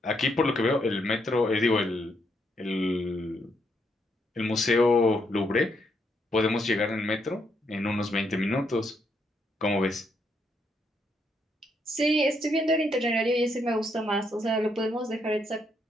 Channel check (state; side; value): normal; both; correlation 0.76